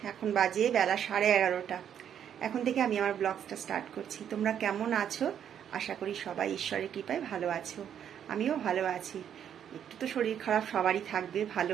এখন বাজে বেলা 11:30। এখন থেকে আমি আমার ব্লগটা স্টার্ট করছি। তোমরা কেমন আছো? আশা করি সবাই ঈশ্বরের কৃপায় ভালো আছো। আমিও ভালো আছি। একটু তো শরীর খারাপ সবারই থাকবে, ভালো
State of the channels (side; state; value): left; quieter; 9.1 dB